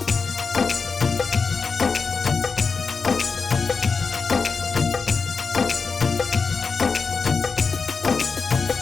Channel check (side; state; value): right; quieter; 4.8 dB